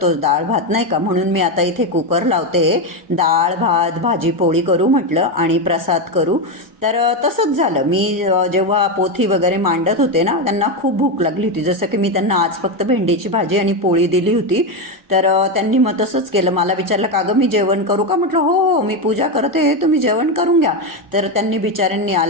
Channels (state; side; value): normal; both; correlation 0.10